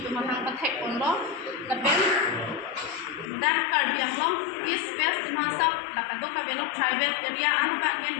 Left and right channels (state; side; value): drops out; right; at 3.3 s